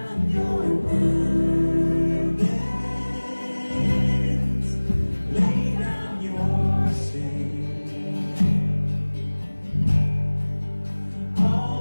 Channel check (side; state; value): both; inverted; correlation -1.00